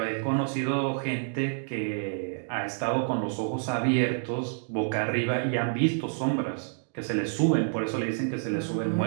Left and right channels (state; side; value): silent; left; digital silence